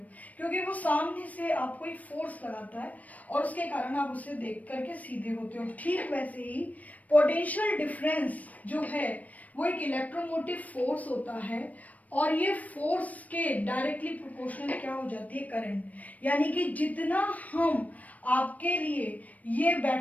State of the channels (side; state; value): right; late; 0.072 ms